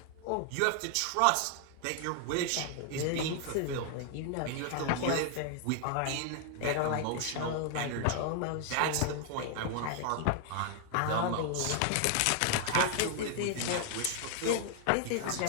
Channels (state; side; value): different; both; correlation 0.00